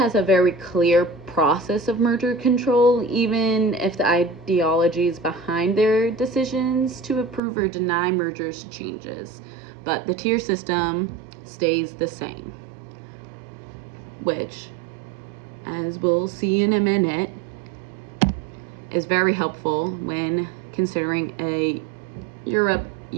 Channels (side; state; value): left; drops out; at 7.4 s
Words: a very clear process of merger control, even if the ideologies behind their decisions to approve or deny mergers changes. But the tier system stays the same, which, as we'll see in a minute, is very helpful when considering a